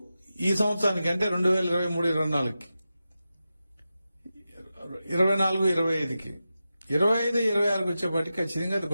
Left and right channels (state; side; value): inverted; both; correlation -0.92